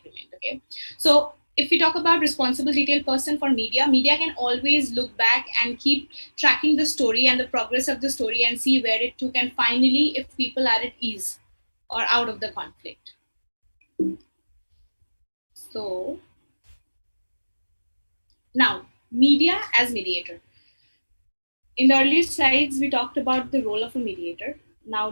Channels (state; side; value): inverted; both; correlation -1.00